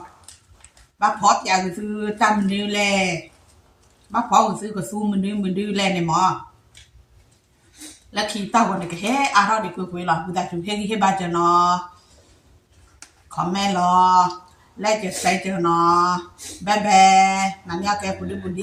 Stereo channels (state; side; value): identical; both; correlation 1.00